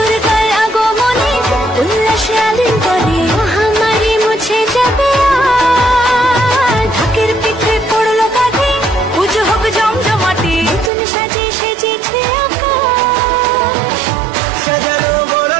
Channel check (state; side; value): drops out; left; at 10.9 s